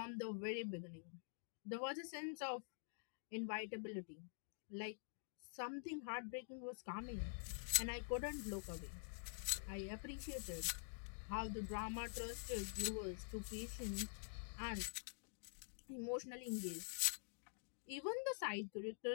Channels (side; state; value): right; silent; digital silence